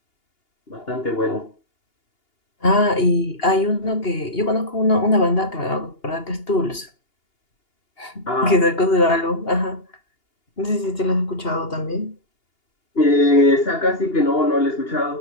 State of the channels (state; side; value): late; right; 2.8 ms